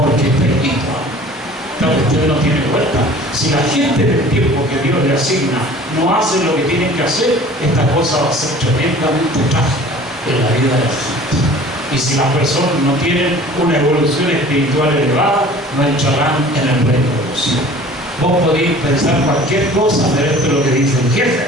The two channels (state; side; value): normal; both; correlation 0.46